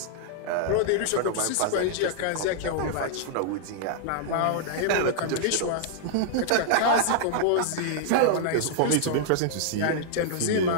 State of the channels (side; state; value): both; different; correlation -0.01